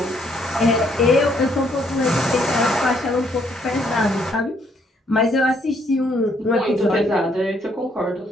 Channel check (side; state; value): both; normal; correlation 0.69